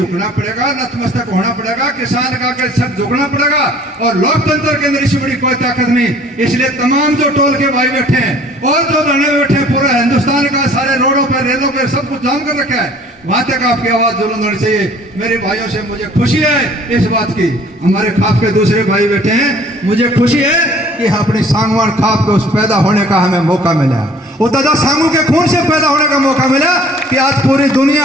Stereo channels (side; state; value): both; normal; correlation 0.54